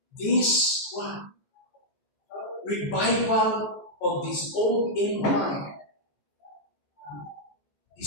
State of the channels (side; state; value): right; late; 14 ms